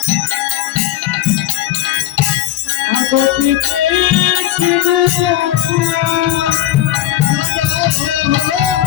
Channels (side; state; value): right; quieter; 13.5 dB